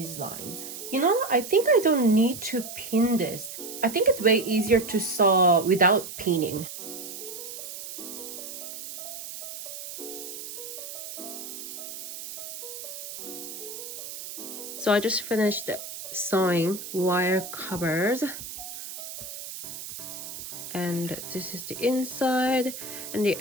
lines. You know, I think I don't need to pin this. I think it's way easier to sew without pinning. So I just finished sewing wire covers, and this is the inside, and the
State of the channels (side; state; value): right; noise; hiss, 9 dB below the sound